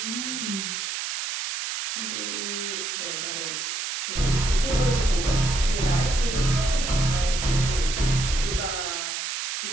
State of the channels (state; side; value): noise; right; hiss, 3 dB below the sound